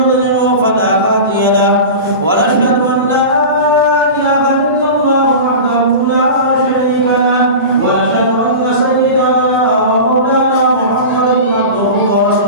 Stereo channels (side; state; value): both; inverted; correlation -0.30